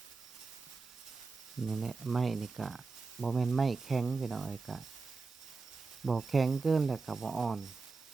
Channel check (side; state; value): left; quieter; 4.2 dB